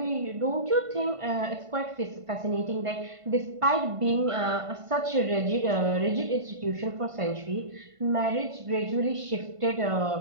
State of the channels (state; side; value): late; left; 1.5 ms